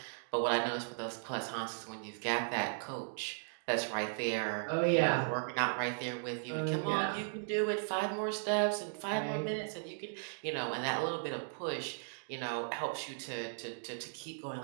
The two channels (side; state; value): left; silent; digital silence